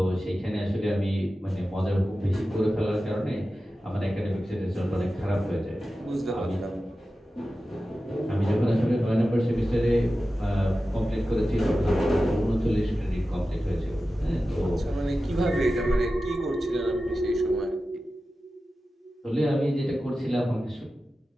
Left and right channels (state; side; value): normal; both; correlation 0.94